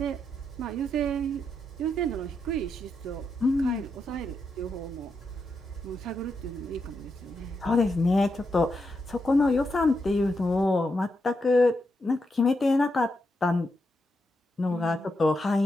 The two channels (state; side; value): normal; both; correlation 0.83